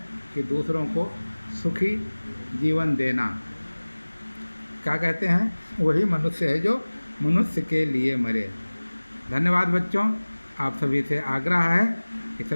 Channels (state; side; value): inverted; both; correlation -1.00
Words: कि दूसरों को सुखी जीवन देना। क्या कहते हैं, वही मनुष्य है जो मनुष्य के लिए मरे। धन्यवाद बच्चों। आप सभी से आग्रह है कि